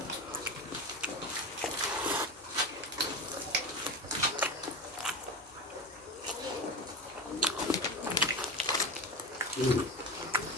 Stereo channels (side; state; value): both; normal; correlation 0.23